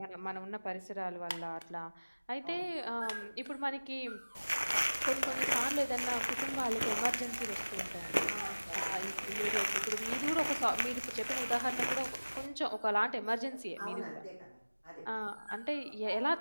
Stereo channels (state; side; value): inverted; both; correlation -1.00